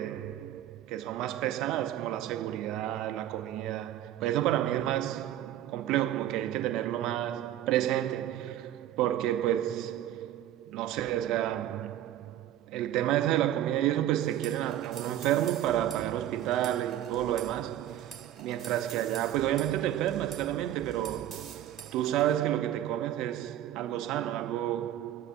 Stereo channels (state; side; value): quieter; left; 12.3 dB